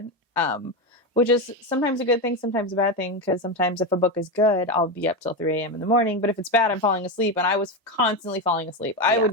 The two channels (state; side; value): normal; both; correlation 0.14